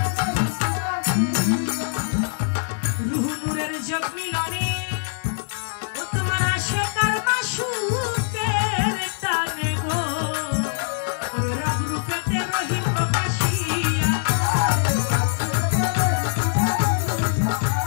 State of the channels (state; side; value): silent; right; 63 dB below the other